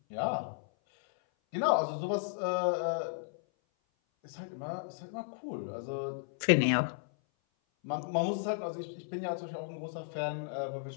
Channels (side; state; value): right; silent; 55 dB below the other